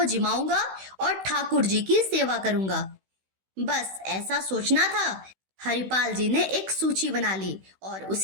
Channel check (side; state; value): left; late; 16 ms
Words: जिमाऊंगा और ठाकुर जी की सेवा करूंगा। बस ऐसा सोचना था। हरिपाल जी ने एक सूची बना ली और